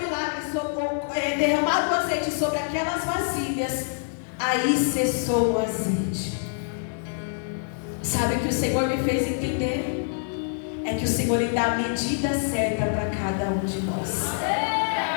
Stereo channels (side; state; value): right; silent; digital silence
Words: milagre, derramado o azeite sobre aquelas vasilhas, aí cessou o azeite. Sabe o que o Senhor me fez entender? É que o Senhor lhe dá a medida certa para cada um de nós.